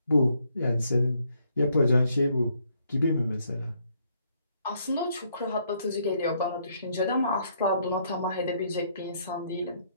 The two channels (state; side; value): inverted; both; correlation -0.71